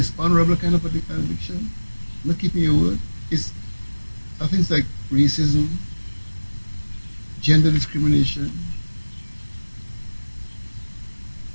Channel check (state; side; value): inverted; both; correlation -1.00